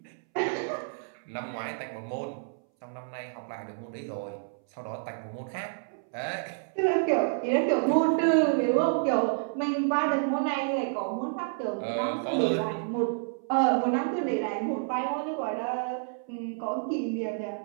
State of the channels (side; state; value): left; silent; 58 dB below the other